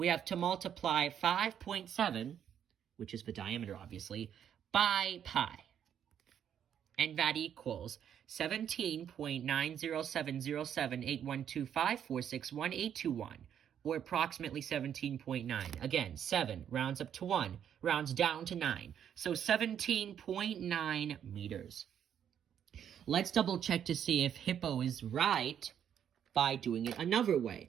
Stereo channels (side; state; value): left; quieter; 9.1 dB